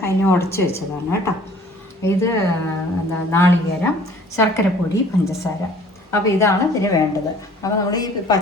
അതിനെ ഉടച്ച് വെച്ചതാണ് കേട്ടോ. ഇത് എന്താ നാളികേരം, ശർക്കരപ്പൊടി, പഞ്ചസാര. അപ്പോൾ ഇതാണ് ഇതിന് വേണ്ടത്. അപ്പോൾ നമ്മൾ ഈ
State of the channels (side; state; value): both; normal; correlation 0.52